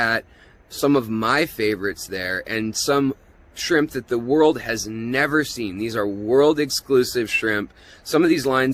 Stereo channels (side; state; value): both; identical; correlation 1.00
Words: some of my favorites there and some shrimp that the world has never seen. These are world exclusive shrimp. Some of these